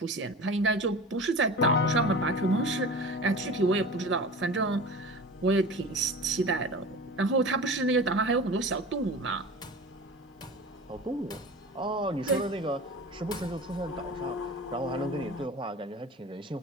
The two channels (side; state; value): both; normal; correlation 0.35